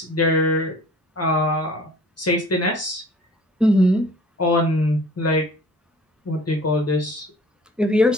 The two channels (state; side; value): normal; both; correlation 0.49